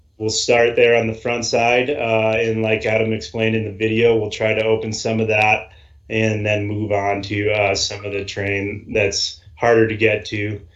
we'll start there on the front side, and like Adam explained in the video, we'll try to open some of that and then move on to some of the terrain that's harder to get to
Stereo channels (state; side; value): identical; both; correlation 1.00